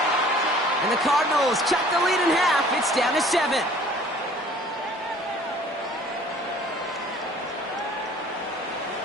And the Cardinals cut the lead in half. It's down to 7.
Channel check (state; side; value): normal; both; correlation 0.51